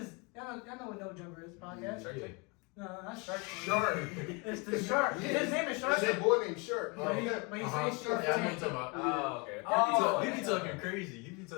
y'all know what No Jumper is podcast. Shark Yeah. Tank? No, not Shark Tank. Shark. It's the Shark. Yeah. His name is Shark. That's that boy named Shark. But he Uh-huh. says Shark Yeah, I know what Tank. you're talking about. Oh, okay. Oh, He be yeah. talking crazy. You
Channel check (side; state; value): right; quieter; 29.4 dB